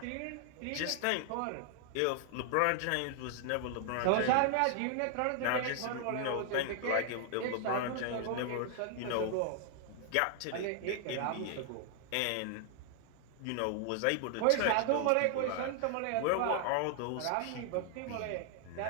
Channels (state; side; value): different; both; correlation 0.00